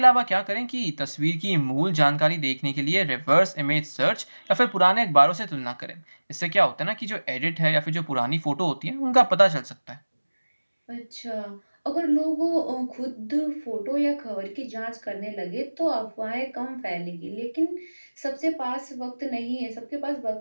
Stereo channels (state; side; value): inverted; both; correlation -1.00